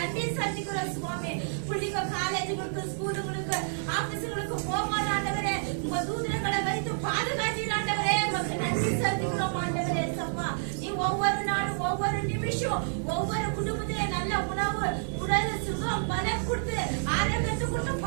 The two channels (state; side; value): silent; left; digital silence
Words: செலுத்துகிறோம் சுவாமி. பிள்ளைங்க காலேஜுகளுக்கு ஸ்கூலுகளுக்கு ஆபீஸுகளுக்கு போகும்போது ஆண்டவரே உங்க தூதர்களை வைத்து பாதுகாத்தீர் ஆண்டவரே. உமக்கு நன்றி செலுத்துகிறோம் ஆண்டவரே. சப்பா நீ ஒவ்வொரு நாளும் ஒவ்வொரு நிமிஷம் ஒவ்வொரு குடும்பத்திலே நல்ல உணவு உடல் சுகம் பலம் கொடுத்து ஆரோக்கியத்தை கொடுத்து